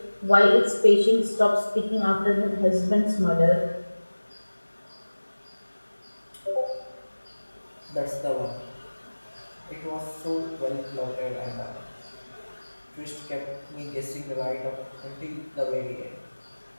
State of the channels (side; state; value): both; inverted; correlation -1.00